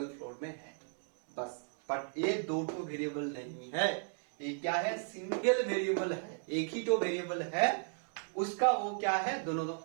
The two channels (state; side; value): silent; left; 54 dB below the other